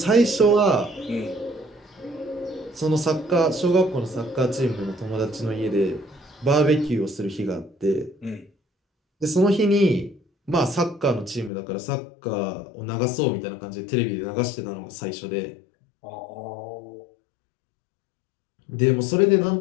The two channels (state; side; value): drops out; right; at 11.5 s